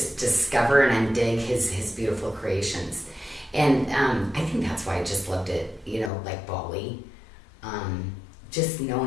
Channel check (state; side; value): drops out; right; at 6.1 s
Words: discover and undig his beautiful creations. And I think that's why I just loved it, you know, like Bali. Just